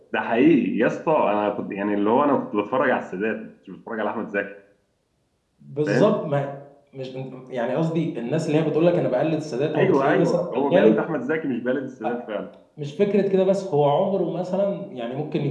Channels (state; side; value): identical; both; correlation 1.00